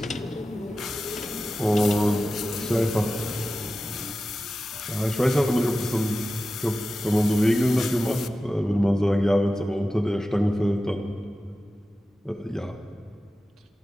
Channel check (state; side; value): normal; both; correlation 0.94